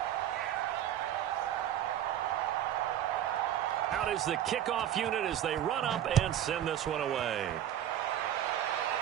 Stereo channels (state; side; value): quieter; left; 11.1 dB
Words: Out is the kickoff unit as they run up and send this one away.